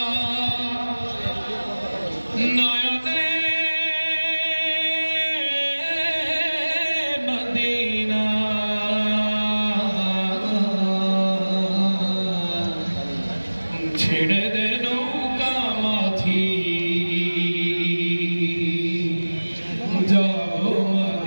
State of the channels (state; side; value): inverted; both; correlation -1.00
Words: নয়নে মদিনা ছেড়ে দে নৌকা মাঝি যাব